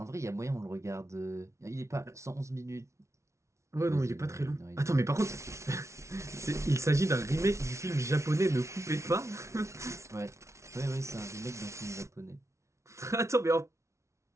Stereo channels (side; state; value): left; late; 0.14 ms